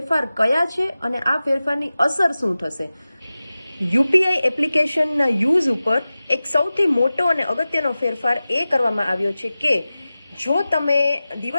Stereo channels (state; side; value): inverted; both; correlation -0.96